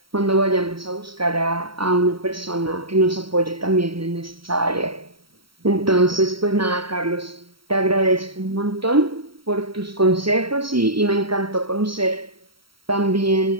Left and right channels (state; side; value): late; left; 0.75 ms